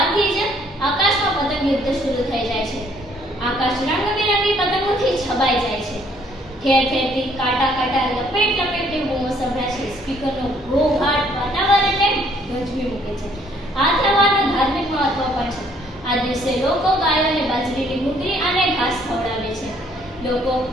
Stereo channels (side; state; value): both; normal; correlation 0.64